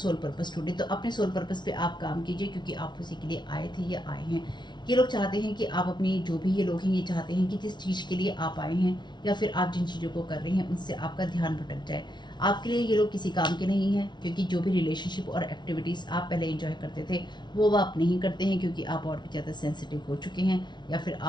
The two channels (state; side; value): late; right; 0.21 ms